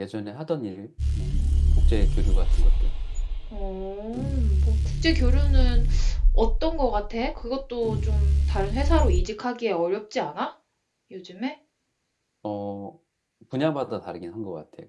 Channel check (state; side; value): identical; both; correlation 1.00